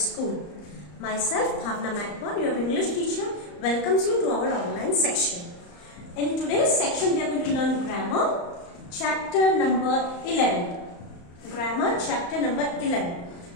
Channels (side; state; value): right; late; 34 ms